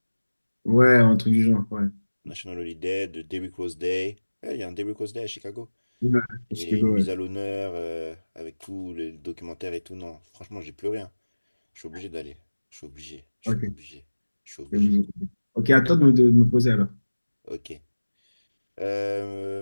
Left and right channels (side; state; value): both; inverted; correlation -1.00